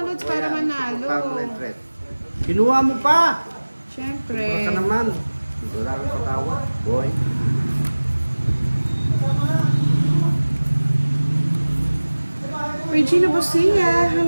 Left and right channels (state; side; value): inverted; both; correlation -1.00